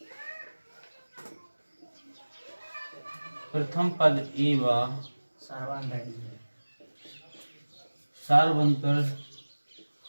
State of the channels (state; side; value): inverted; both; correlation -1.00